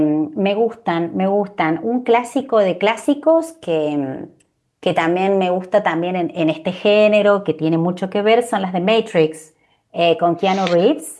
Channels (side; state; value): both; identical; correlation 1.00